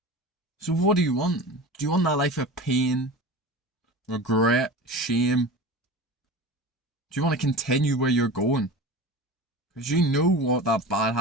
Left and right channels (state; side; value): normal; both; correlation 0.32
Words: So what do you want? Do you want that life of pain, regret, shame? Do you want to continue where you're going? Because you know what that bad